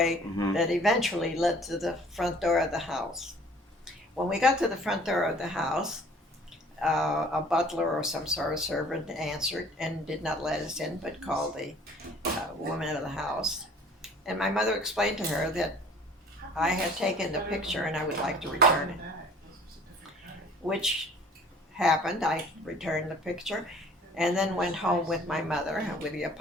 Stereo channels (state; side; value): normal; both; correlation 0.51